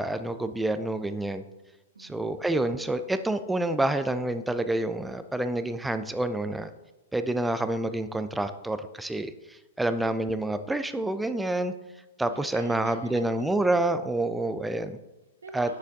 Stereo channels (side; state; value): both; normal; correlation 0.80